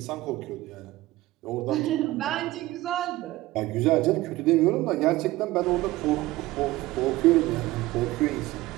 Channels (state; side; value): quieter; left; 18.0 dB